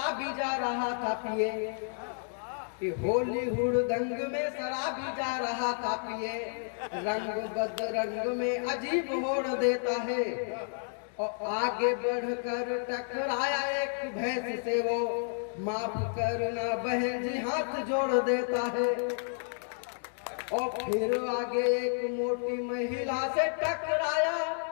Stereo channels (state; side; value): silent; right; digital silence